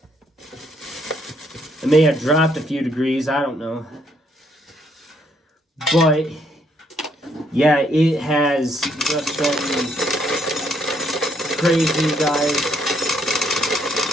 It may have dropped a few degrees, I don't know. But yeah, it has just been crazy, guys.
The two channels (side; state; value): both; normal; correlation 0.70